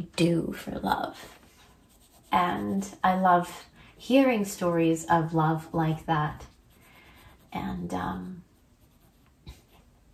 do for love? And I love hearing stories of love like that.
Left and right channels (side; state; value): both; identical; correlation 1.00